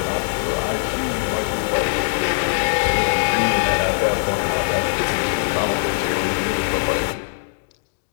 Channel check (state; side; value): silent; right; 65 dB below the other